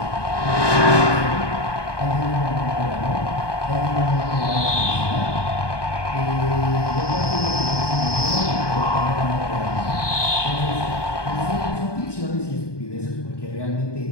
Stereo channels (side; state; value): right; late; 1.2 ms